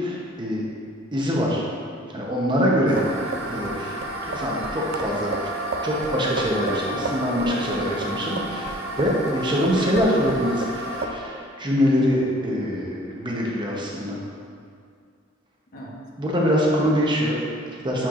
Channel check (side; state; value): both; normal; correlation 0.51